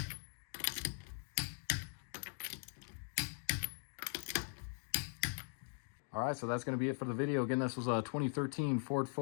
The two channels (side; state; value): right; silent; 50 dB below the other